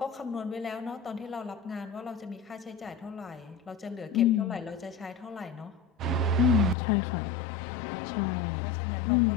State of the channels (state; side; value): drops out; right; at 6.8 s